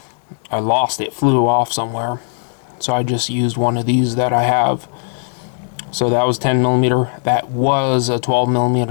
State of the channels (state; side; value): silent; right; digital silence